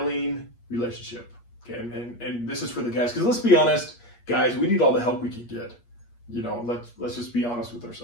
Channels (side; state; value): right; late; 8.5 ms